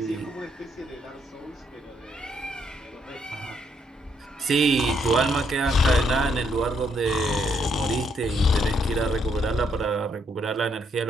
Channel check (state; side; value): normal; both; correlation 0.73